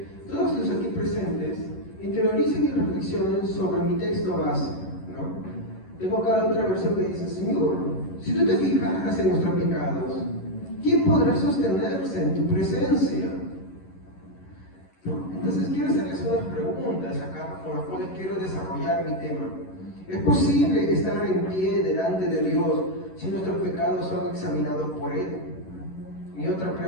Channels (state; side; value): late; right; 11 ms